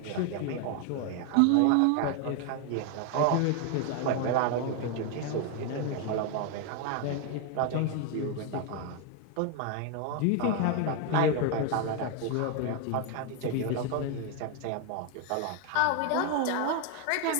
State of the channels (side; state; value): both; different; correlation 0.01